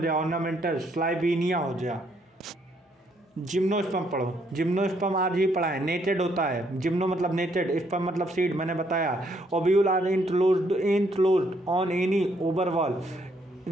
ऑर्नामेंटल, स्लाइबीनिया हो गया। जिम्नोस्पर्म पढ़ो, जिम्नोस्पर्म आज ही पढ़ा है। नेटेड होता है, जिम्नो मतलब नेटेड, स्पर्म मतलब सीड, मैंने बताया। Ovule are enclosed on any ovary wall,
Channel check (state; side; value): normal; both; correlation 0.71